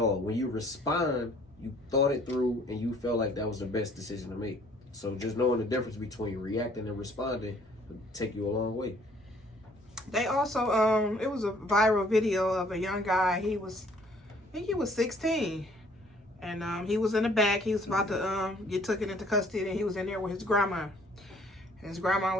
When you respond, you thought it through and you felt like that was the best decision to make. So just knowing the difference between reacting and responding will take you a long way. They also, it was a viral video of a young guy. I think he was 16. And he was in the back. He was about to get taken into custody, and he was in there with his grandma. And his grandma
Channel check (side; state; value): both; normal; correlation 0.59